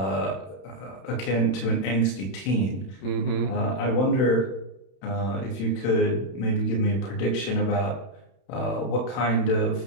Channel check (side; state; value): right; late; 31 ms